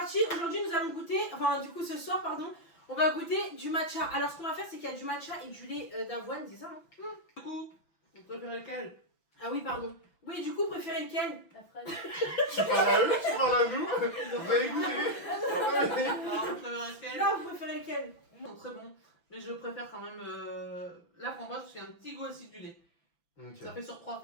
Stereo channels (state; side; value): late; right; 6.0 ms